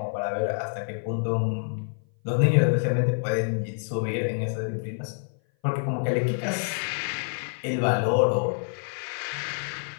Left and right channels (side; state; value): right; silent; 57 dB below the other